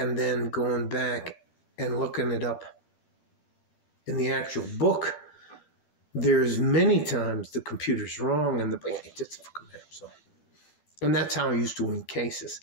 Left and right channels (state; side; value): late; right; 12 ms